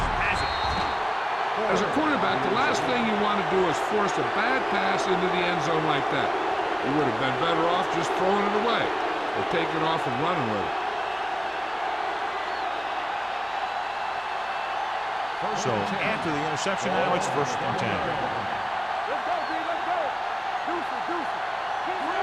has it. As a quarterback, the last thing you want to do is force a bad pass into the end zone like that. You would have been better off just throwing it away or taking off and running with it. So after the interception, now it's 1st and 10. Let's go, B, let's go. Deuces. Keep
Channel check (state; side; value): identical; both; correlation 1.00